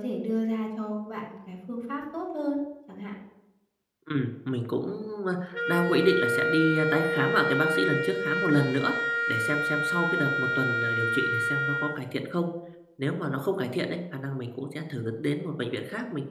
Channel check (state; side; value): identical; both; correlation 1.00